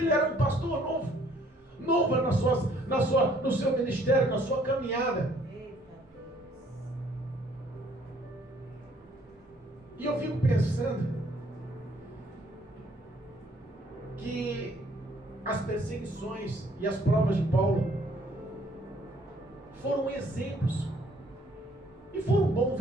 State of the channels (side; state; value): both; normal; correlation 0.62